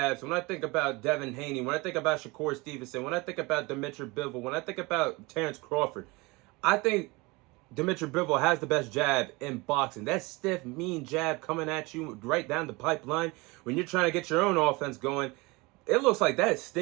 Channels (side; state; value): left; quieter; 24.6 dB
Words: when I think about Devin Haney, when I think about Shakur Stevenson, when I think about Dmitry Bivol, when I think about Terrence Crawford, I think Dmitry Bivol has the best jab in boxing. That stiff, mean jab coming at you right down the pipeline when you're trying to get your own offense going. It looks like that